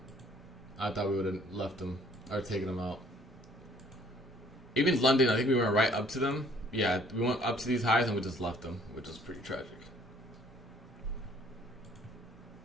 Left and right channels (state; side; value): normal; both; correlation 0.59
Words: I thought we would have left them, or taken them out. Even London, I think we went right up to them. Yeah, we went up to these highs and we just left them, which is pretty tragic.